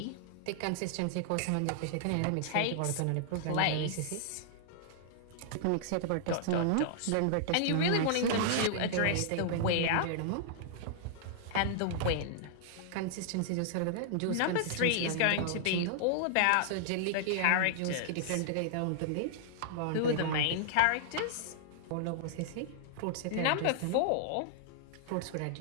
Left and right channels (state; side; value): different; both; correlation -0.01